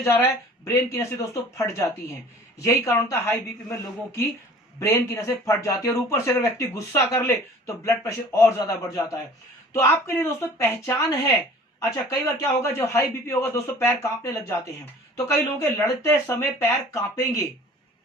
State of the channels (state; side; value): normal; both; correlation 0.47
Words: जा रहा है, ब्रेन की नसें दोस्तों फट जाती हैं। यही कारण था हाई बीपी में लोगों की ब्रेन की नसें फट जाती है। और ऊपर से अगर व्यक्ति गुस्सा कर ले तो ब्लड प्रेशर और ज्यादा बढ़ जाता है। तो आपके लिए दोस्तों पहचान है। अच्छा, कई बार क्या होगा, जब हाई बीपी होगा दोस्तों पैर कांपने लग जाते हैं, तो कई लोगों के लड़ते समय पैर कांपेंगे।